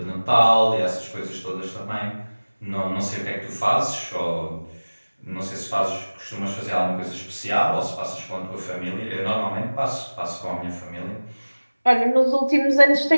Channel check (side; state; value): both; inverted; correlation -1.00